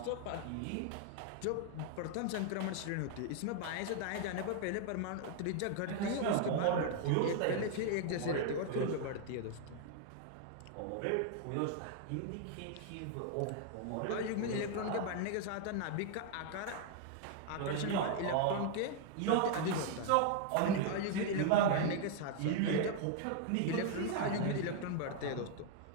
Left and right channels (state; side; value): different; both; correlation 0.00